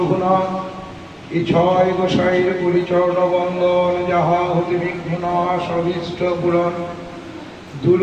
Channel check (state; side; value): identical; both; correlation 1.00